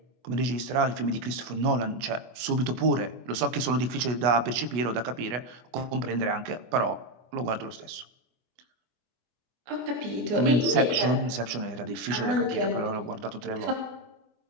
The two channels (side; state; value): left; late; 25 ms